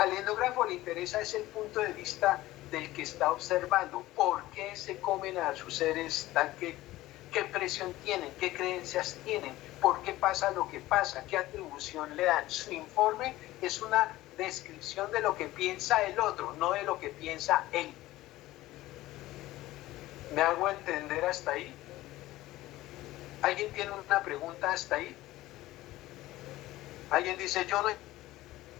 etnógrafo le interesa es el punto de vista del que está observando, por qué se comen a sus seres, qué presión tienen, qué creencias tienen, por qué pasa lo que pasa, qué atribución le dan. Su informe es una descripción de lo que piensa el otro, no de lo que piensa él. ¿Me hago entender hasta ahí? ¿Alguien tiene una pregunta hasta ahí? Alguien dice, yo no he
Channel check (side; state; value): right; quieter; 16.8 dB